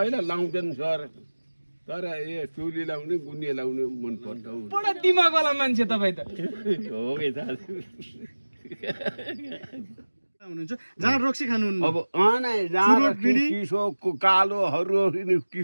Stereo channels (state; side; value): inverted; both; correlation -1.00